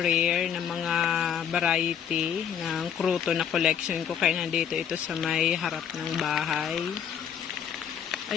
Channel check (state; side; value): quieter; right; 8.5 dB